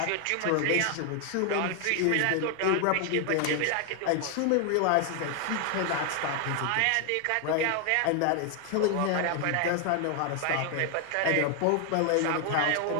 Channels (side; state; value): both; different; correlation 0.00